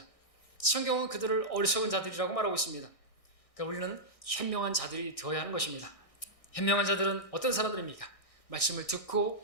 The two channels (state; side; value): late; right; 1.6 ms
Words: 성경은 그들을 어리석은 자들이라고 말하고 있습니다. 그러니까 우리는 현명한 자들이 되어야 하는 것입니다. 현명한 자들은 어떤 사람들입니까? 말씀을